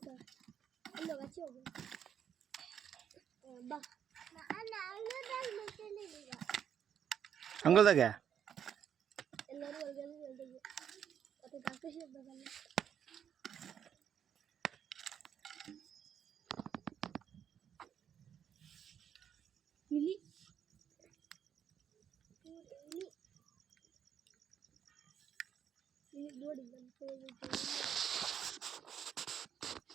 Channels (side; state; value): left; quieter; 8.7 dB